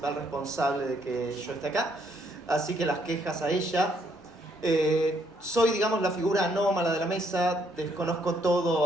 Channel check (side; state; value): both; normal; correlation 0.70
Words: responsable de que yo esté acá. Así que las quejas a ella. Soy, digamos, la figura anómala de la mesa, desconozco